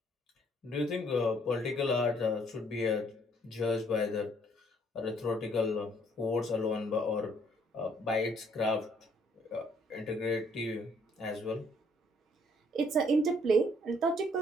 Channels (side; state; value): both; normal; correlation 0.65